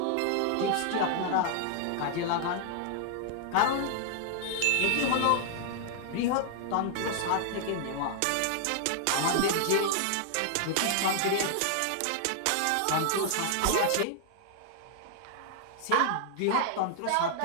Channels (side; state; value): both; different; correlation 0.00